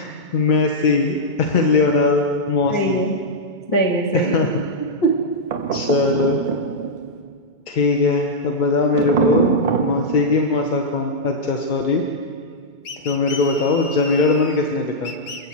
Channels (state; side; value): late; right; 2.2 ms